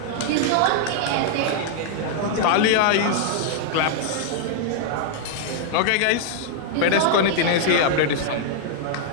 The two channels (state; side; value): different; both; correlation 0.00